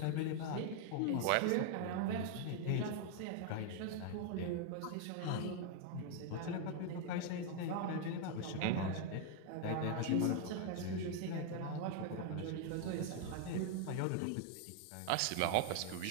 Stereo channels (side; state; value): both; different; correlation 0.00